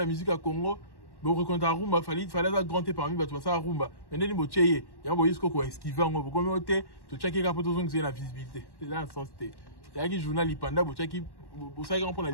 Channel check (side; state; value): right; late; 1.1 ms